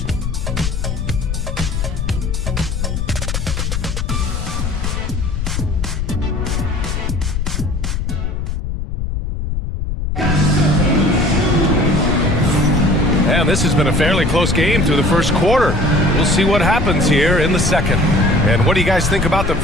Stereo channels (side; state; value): left; noise; rumble, 2 dB below the sound